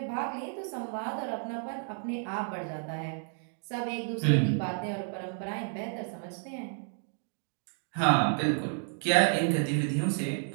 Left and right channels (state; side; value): silent; left; 57 dB below the other